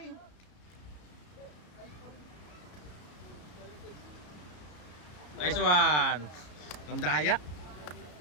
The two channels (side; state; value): right; late; 33 ms